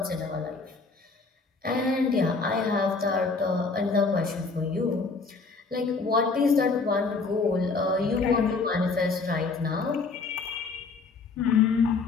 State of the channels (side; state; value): right; quieter; 4.2 dB